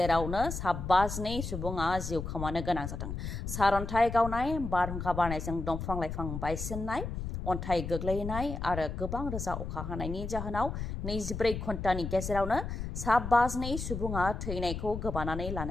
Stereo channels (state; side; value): noise; left; rumble, 5 dB below the sound